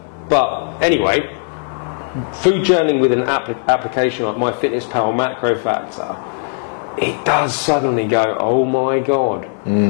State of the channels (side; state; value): right; silent; 65 dB below the other